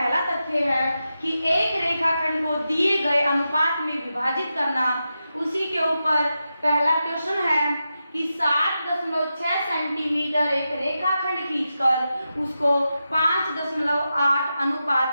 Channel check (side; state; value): both; inverted; correlation -0.89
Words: तथ्य है कि एक रेखाखंड को दिए गए अनुपात में विभाजित करना। उसी के ऊपर पहला क्वेश्चन है कि 7.6 सेंटीमीटर एक रेखाखंड खींचकर उसको 5.8 अनुपात